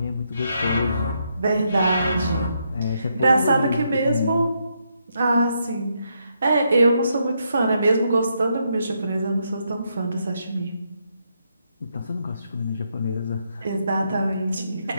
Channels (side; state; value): both; inverted; correlation -0.78